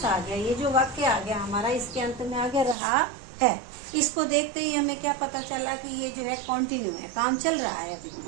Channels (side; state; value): left; drops out; at 2.8 s